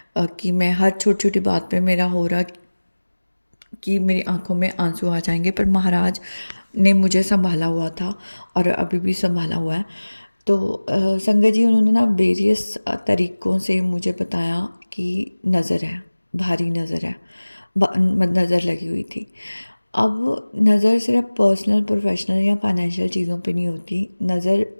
कि मैं हर छोटी छोटी बात पे मेरा हो रहा कि मेरी आंखों में आंसू आ जाएंगे। पर महाराज ने मुझे संभाला हुआ था और अभी भी संभाला हुआ है। तो संगत जी उन्होंने ना वेरियस तरीक़ों से मुझे बताया कि नज़र है, भारी नज़र है, नज़र लगी हुई थी। अब नज़र सिर्फ पर्सनल, प्रोफेशनल या फाइनेंशियल चीज़ों पे नहीं होती। नज़र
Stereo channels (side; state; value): both; inverted; correlation -1.00